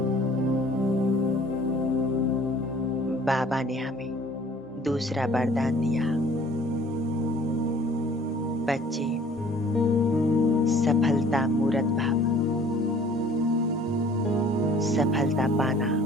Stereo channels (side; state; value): both; normal; correlation 0.53